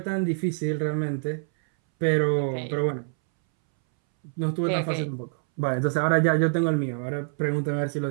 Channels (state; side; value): silent; left; 61 dB below the other